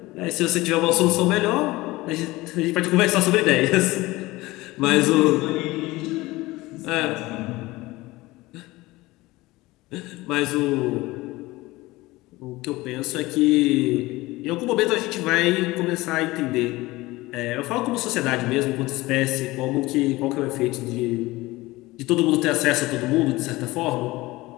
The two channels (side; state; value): right; quieter; 19.9 dB